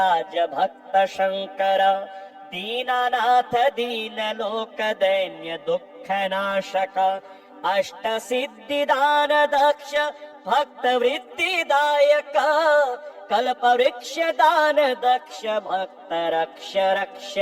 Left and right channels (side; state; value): both; identical; correlation 1.00